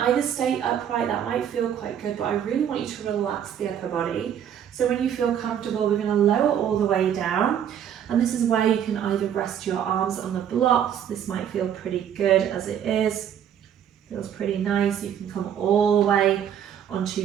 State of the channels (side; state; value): left; quieter; 9.2 dB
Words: either stay upright, that might feel quite good, but I really want you to relax the upper body. So when you feel comfortable, we're going to lower all the way down. And this is where you can either rest your arms on the blocks. This might feel pretty good as it is. Feels pretty nice. You can come all the way onto